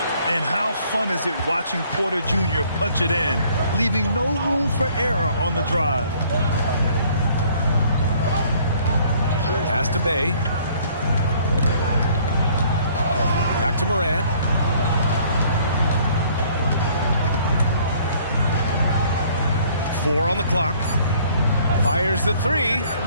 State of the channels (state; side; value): inverted; both; correlation -0.59